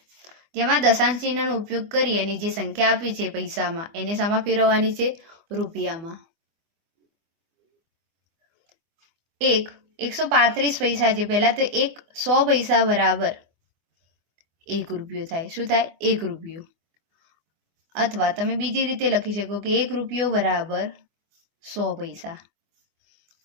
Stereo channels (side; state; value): left; late; 24 ms